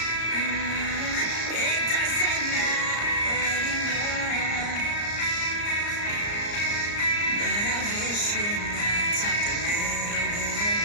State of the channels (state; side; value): late; right; 34 ms